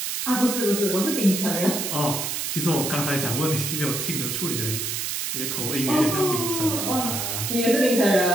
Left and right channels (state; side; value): noise; right; hiss, 2 dB below the sound